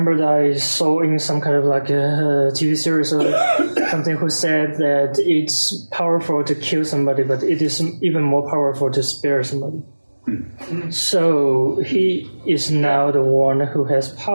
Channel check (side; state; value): both; inverted; correlation -1.00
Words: that I saw in some kind of like a TV series or something who said that it's powerful to kill somebody, but it is even more powerful to spare somebody. So he is now the one who has